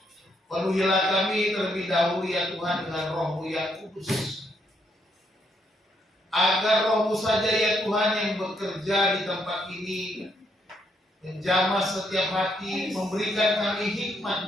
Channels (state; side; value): normal; both; correlation 0.75